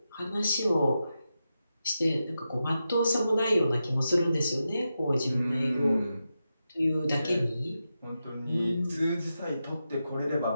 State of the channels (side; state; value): both; inverted; correlation -0.89